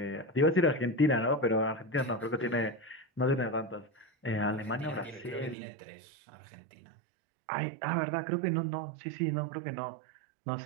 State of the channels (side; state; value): left; drops out; at 5.6 s